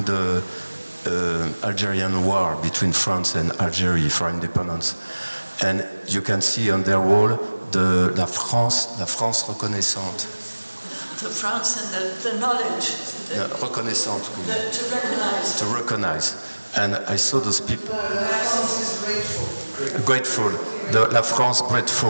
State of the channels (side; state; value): both; inverted; correlation -1.00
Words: the Algerian war between France and Algeria for independence. And you can see on their wall la France reconnaissante. The France and the knowledge. Reconnaissante. To recognize. And I saw those people. France is grateful. La France